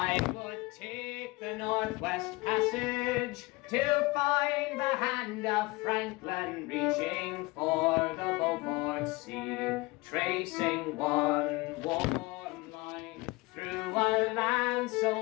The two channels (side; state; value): right; quieter; 23.0 dB